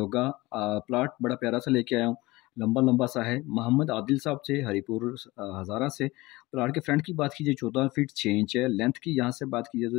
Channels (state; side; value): quieter; right; 20.8 dB